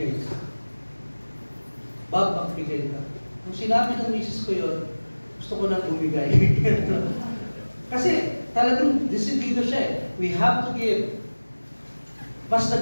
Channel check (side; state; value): both; inverted; correlation -1.00